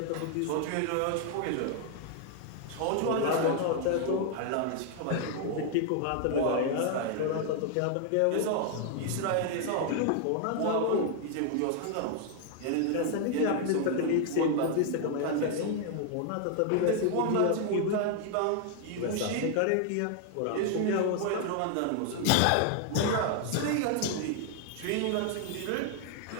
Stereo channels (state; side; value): different; both; correlation 0.00